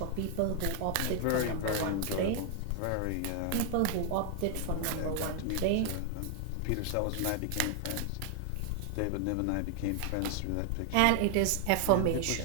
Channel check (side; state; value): both; different; correlation 0.00